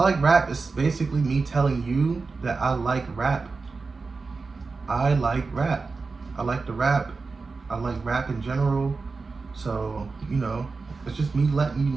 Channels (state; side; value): quieter; left; 4.2 dB